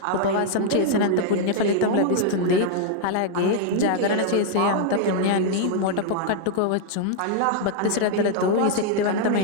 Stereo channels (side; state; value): both; different; correlation -0.01